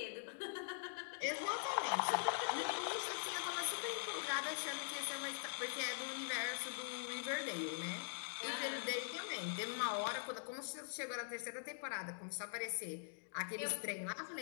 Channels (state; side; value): silent; right; digital silence